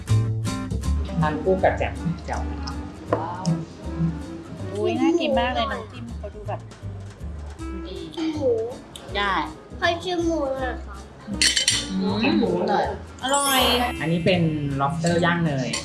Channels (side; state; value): both; identical; correlation 1.00